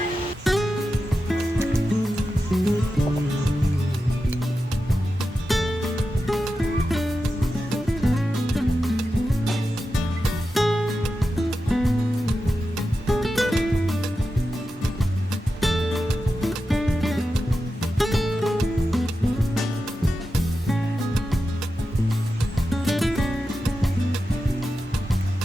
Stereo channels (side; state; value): both; normal; correlation 0.91